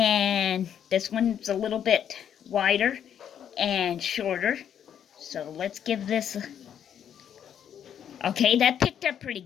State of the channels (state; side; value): quieter; right; 9.1 dB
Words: this one's a little bit wider and shorter. So let's give this a... Okay, that picked up pretty